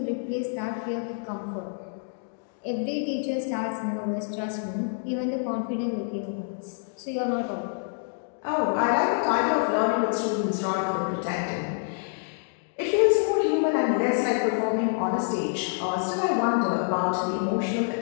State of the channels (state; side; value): silent; right; digital silence